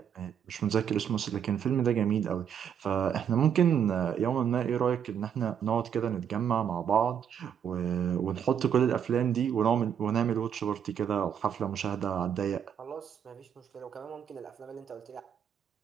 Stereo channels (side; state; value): left; quieter; 8.4 dB